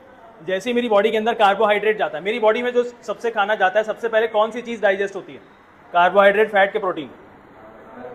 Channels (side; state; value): both; identical; correlation 1.00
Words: जैसे ही मेरी बॉडी के अंदर कार्बोहाइड्रेट जाता है, मेरी बॉडी में जो सबसे खाना जाता है सबसे पहले कौन सी चीज़ डाइजेस्ट होती है? कार्बोहाइड्रेट, फैट के प्रोटीन।